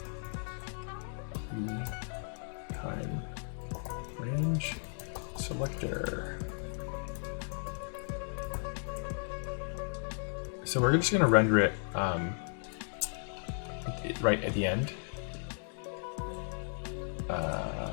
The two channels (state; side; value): silent; right; 54 dB below the other